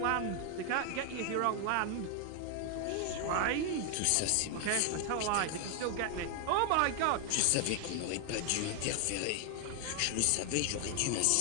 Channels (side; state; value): both; different; correlation 0.00